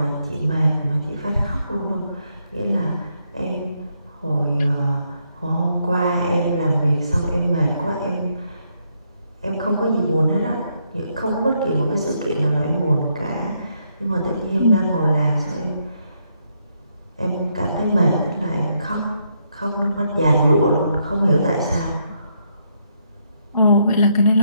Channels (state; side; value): inverted; both; correlation -0.76